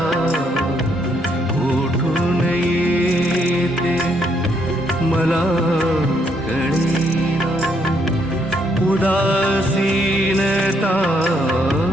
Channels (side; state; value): both; normal; correlation 0.72